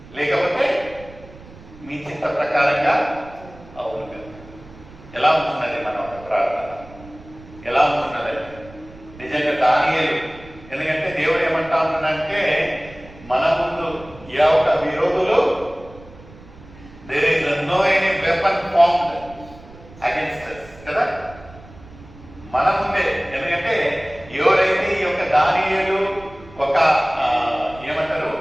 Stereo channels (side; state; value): right; noise; rumble, 20 dB below the sound